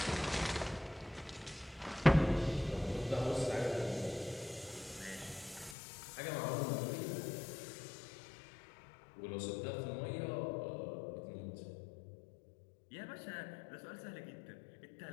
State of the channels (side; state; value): right; drops out; at 5.8 s